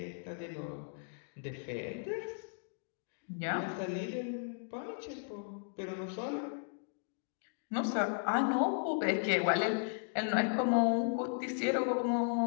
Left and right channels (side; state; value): right; silent; digital silence